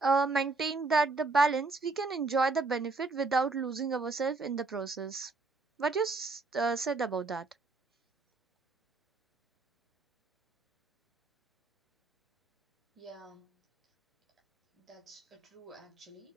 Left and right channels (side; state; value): left; quieter; 3.7 dB